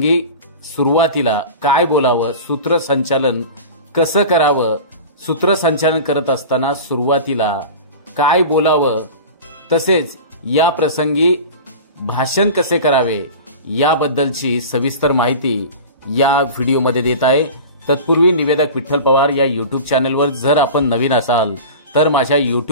सुरुवातीला काय बोलावं, सूत्रसंचालन कसं करावं, सूत्रसंचालन करत असताना सुरुवातीला काय बोलावं, तसेच या प्रसंगी भाषण कसे करावे याबद्दलची सविस्तर माहिती या व्हिडिओमध्ये देत आहे। तत्पूर्वी निवेदक विठ्ठल पवार या यूट्यूब चॅनलवर जर आपण नवीन असाल तर माझ्या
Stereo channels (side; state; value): both; inverted; correlation -0.34